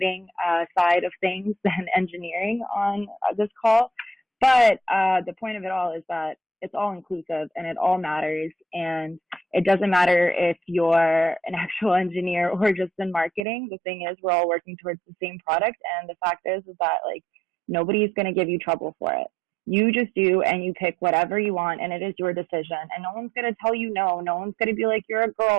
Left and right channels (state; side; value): drops out; left; at 13.5 s